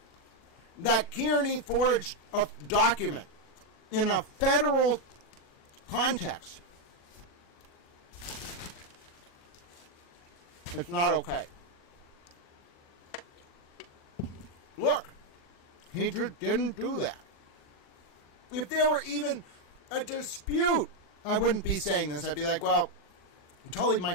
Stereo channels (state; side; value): late; right; 40 ms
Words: that Kearney forged a document in a federal context? It's not okay. Look, he just didn't do that. If there were even a dispute, I wouldn't be saying this. I'd be like, well, Tully